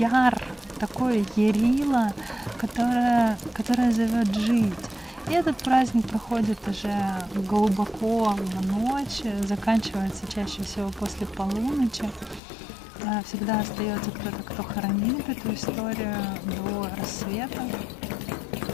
такое ярило, которое зовет жить. И этот праздник проходит уже глубоко в ночь, заканчивается чаще всего после полуночи. Всегда остается кто-то, кто хранит эту историю до рассвета.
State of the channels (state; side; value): drops out; right; at 12.4 s